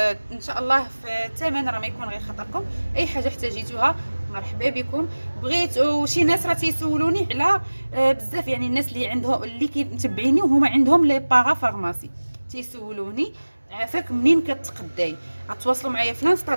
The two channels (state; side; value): inverted; both; correlation -1.00